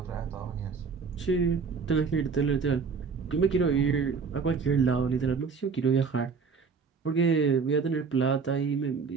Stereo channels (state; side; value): quieter; left; 5.4 dB